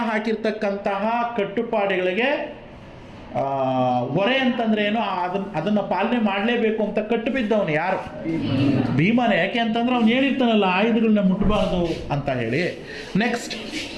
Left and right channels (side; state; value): both; identical; correlation 1.00